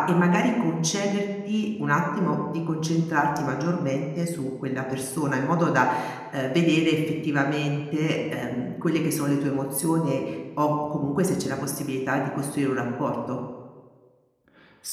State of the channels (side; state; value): both; identical; correlation 1.00